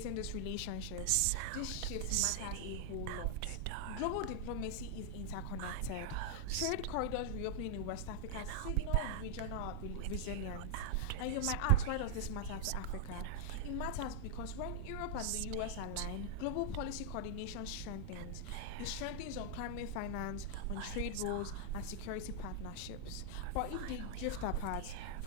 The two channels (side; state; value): both; different; correlation -0.01